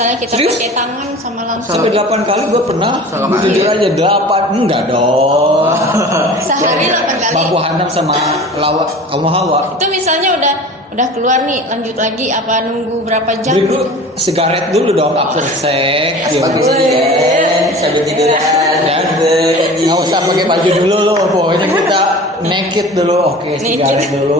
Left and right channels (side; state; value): both; normal; correlation 0.39